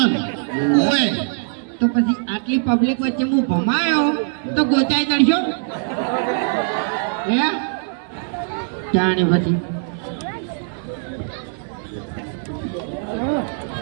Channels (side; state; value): left; silent; 65 dB below the other